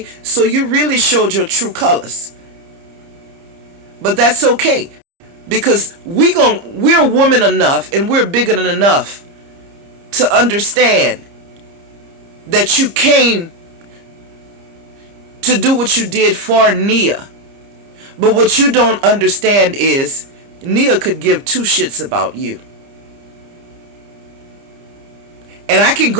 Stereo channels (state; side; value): late; left; 30 ms